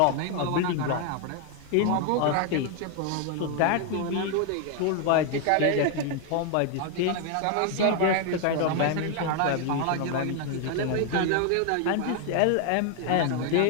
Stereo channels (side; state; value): both; different; correlation 0.01